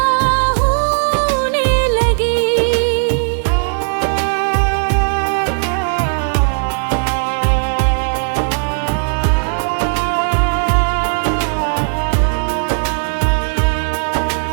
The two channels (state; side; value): silent; left; 58 dB below the other